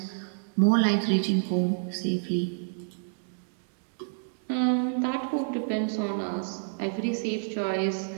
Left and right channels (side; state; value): left; silent; digital silence